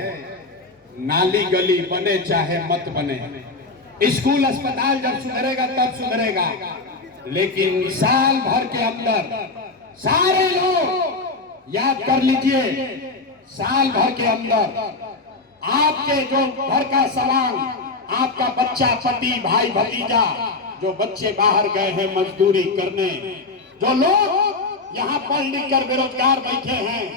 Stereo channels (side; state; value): right; quieter; 3.5 dB